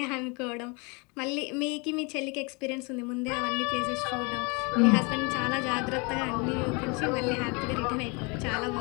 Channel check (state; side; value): quieter; right; 30.0 dB